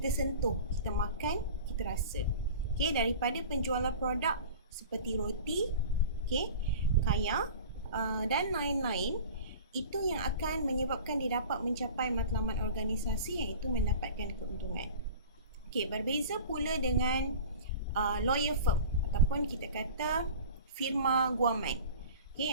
sentuh, kita makan, kita rasa. Okay, daripada penjualan produk seperti roti, okay, kaya dan lain-lain, itu yang akan menyebabkan dia dapat mencapai matlamat organisasi, iaitu mendapatkan keuntungan. Okay, berbeza pula dengan lawyer firm ataupun kita kata firma guaman, okay,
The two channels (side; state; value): both; inverted; correlation -0.38